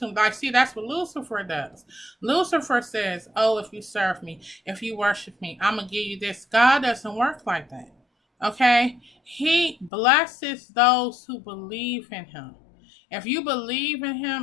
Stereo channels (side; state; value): right; drops out; at 9.9 s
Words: them. Like, see, that's what Lucifer does. Lucifer says, oh, if you serve me, if you worship me, I'm going to give you this. God doesn't work like that. Okay, he blesses those who believe in him. If you believe in